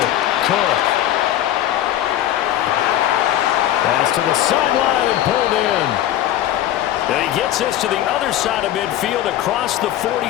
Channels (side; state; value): right; quieter; 12.6 dB